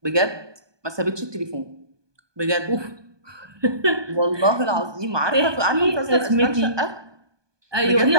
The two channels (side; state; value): left; late; 1.2 ms